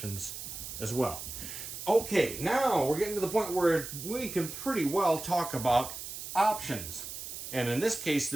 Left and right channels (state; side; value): noise; right; hiss, 9 dB below the sound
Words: as well. Okay, now we're getting to the point where we can pretty well talk about options. And in this case,